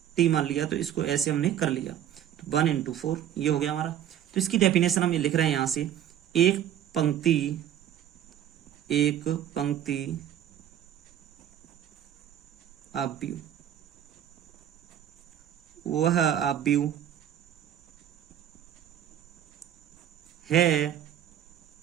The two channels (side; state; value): left; quieter; 10.6 dB